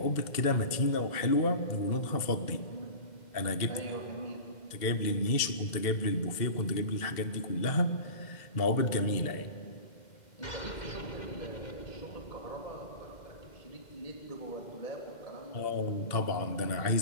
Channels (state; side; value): late; right; 2.1 ms